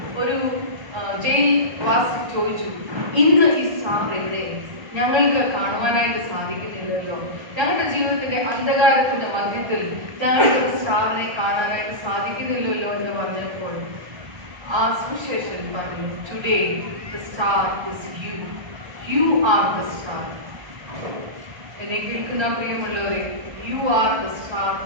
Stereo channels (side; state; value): left; late; 1.3 ms